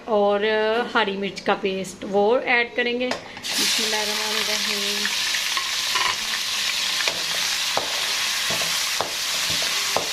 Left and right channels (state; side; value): noise; left; rumble, 29 dB below the sound